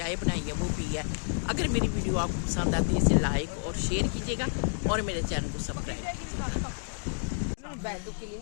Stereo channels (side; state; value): right; silent; digital silence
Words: बनाई है वो पी है। अगर मेरी वीडियो आपको पसंद आती है इसे लाइक और शेयर कीजिएगा, और मेरे चैनल को सब्सक्राइब कीजिएगा।